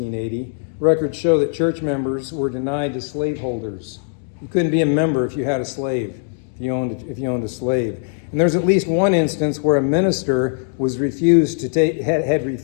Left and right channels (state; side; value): silent; right; digital silence